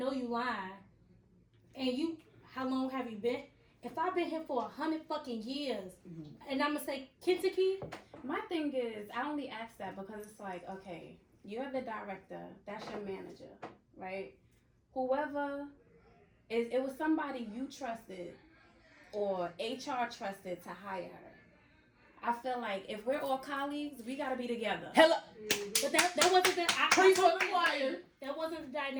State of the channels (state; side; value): identical; both; correlation 1.00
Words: And how long have you been? If I've been here for 100 fucking years, and I'm gonna say Kentucky, My thing is, I only ask that because it's like, okay, you're the director, that's your manager, right? Whoever it was somebody you trusted or HR trusted to hire her. I feel like if we're all colleagues, we gotta be together. Hello. but that wasn't the Preach for the choir. That wasn't the